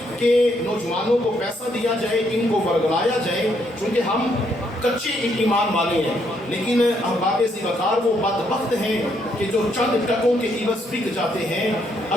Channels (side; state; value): both; normal; correlation 0.73